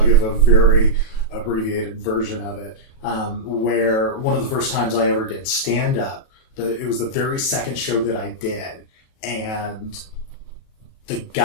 give a very abbreviated version of it. Where one of the first times I ever did stand-up, it was the very second show that I did. And the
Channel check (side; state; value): right; late; 37 ms